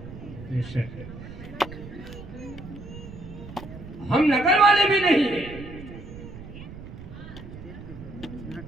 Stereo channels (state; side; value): noise; right; rumble, 13 dB below the sound